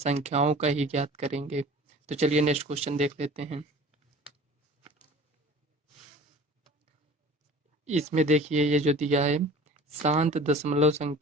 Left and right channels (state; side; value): normal; both; correlation 0.43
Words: का ही ज्ञात करेंगे। तो चलिए नेक्स्ट क्वेश्चन देख लेते हैं। इसमें देखिए ये जो दिया है, शांत दशमलव